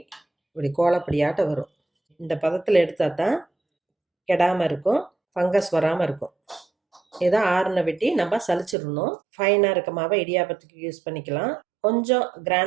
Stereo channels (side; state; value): left; drops out; at 8.8 s